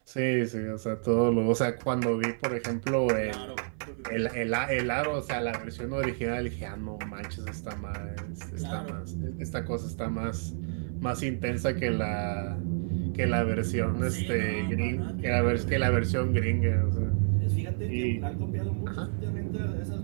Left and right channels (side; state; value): left; silent; 58 dB below the other